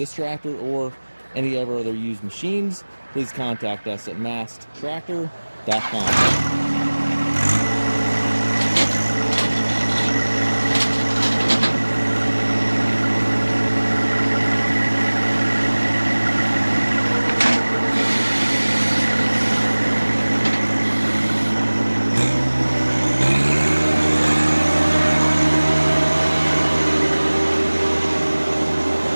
tractor or any of our other used machines, please contact us at maskedtractor.com.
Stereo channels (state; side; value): inverted; both; correlation -1.00